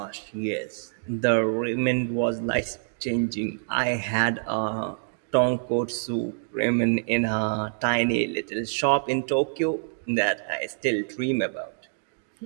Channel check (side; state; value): left; silent; digital silence